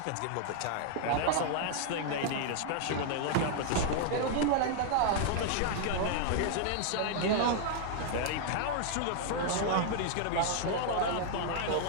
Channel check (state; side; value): different; both; correlation 0.00